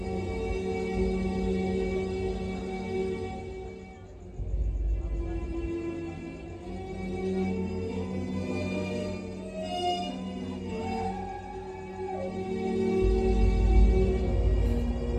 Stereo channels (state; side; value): identical; both; correlation 1.00